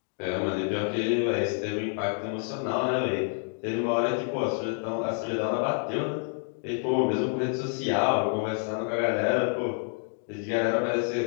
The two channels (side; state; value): right; silent; 59 dB below the other